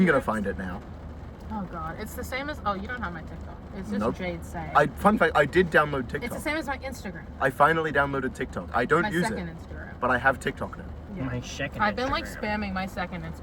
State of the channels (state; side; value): identical; both; correlation 1.00